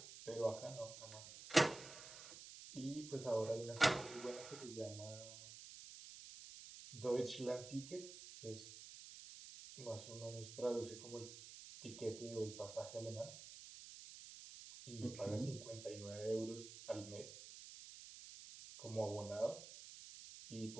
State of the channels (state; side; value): noise; right; hiss, 12 dB below the sound